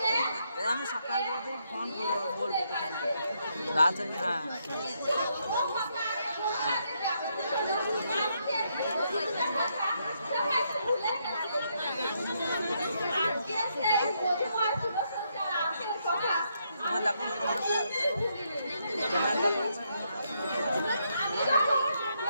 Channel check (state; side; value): inverted; both; correlation -0.77